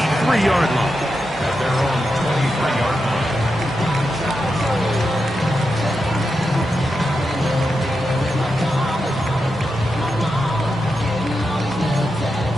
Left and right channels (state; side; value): normal; both; correlation 0.87